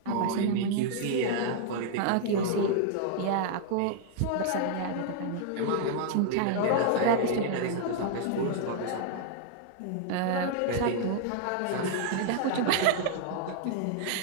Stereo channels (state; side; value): different; both; correlation -0.01